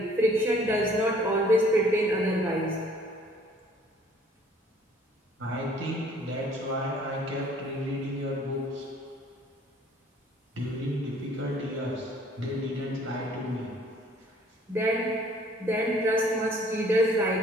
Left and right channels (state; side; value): normal; both; correlation 0.56